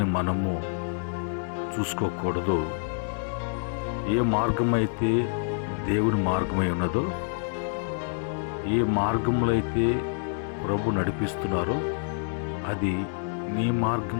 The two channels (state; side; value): silent; right; digital silence